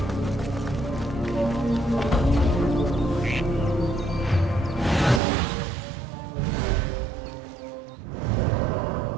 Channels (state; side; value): drops out; left; at 5.2 s